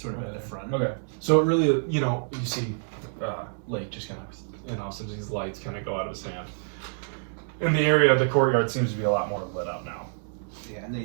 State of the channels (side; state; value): left; silent; 59 dB below the other